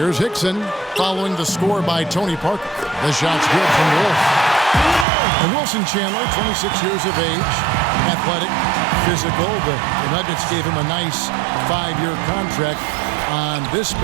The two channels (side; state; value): left; drops out; at 5.1 s